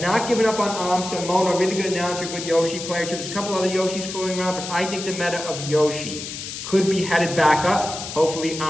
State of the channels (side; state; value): left; noise; hiss, 8 dB below the sound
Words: given up on Amsa. Mona, really good announcer, good Yoshi player too. There's a couple other Yoshis fooling around, but I think the meta of Yoshi could be headed back up. Hopefully,